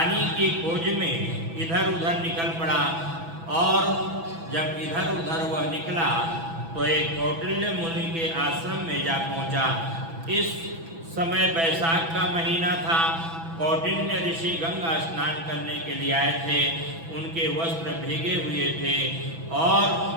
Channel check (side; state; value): left; late; 6.1 ms